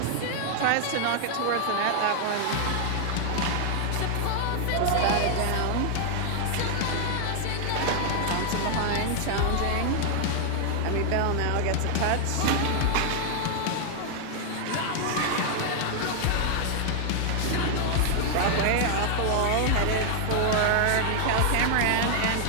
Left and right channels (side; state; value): both; different; correlation 0.00